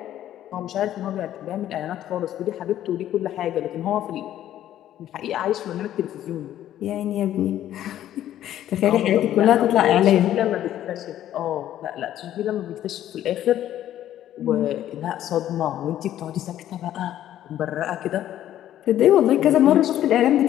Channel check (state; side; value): quieter; right; 12.1 dB